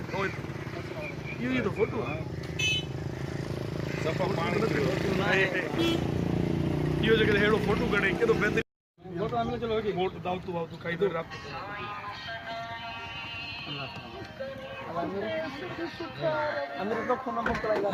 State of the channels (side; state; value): both; identical; correlation 1.00